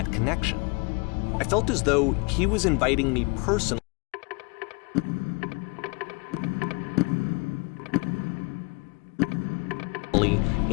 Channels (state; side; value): quieter; right; 29.3 dB